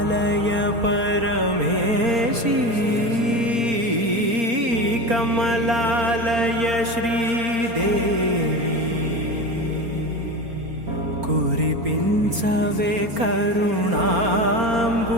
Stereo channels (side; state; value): left; late; 4.3 ms